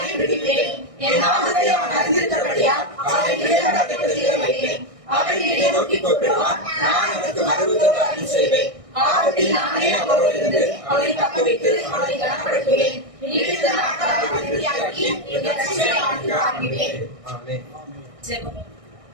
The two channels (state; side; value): late; left; 1.6 ms